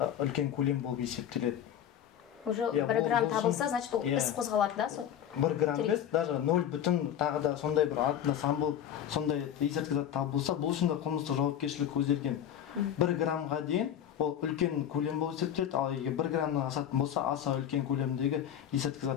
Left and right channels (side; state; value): right; quieter; 10.0 dB